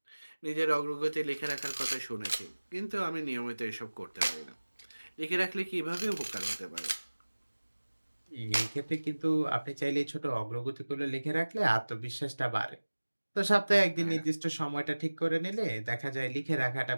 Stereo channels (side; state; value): both; inverted; correlation -1.00